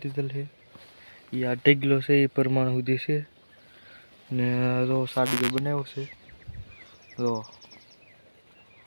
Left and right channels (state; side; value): inverted; both; correlation -1.00